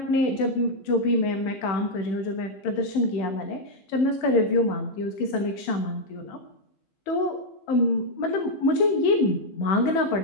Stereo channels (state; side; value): late; right; 15 ms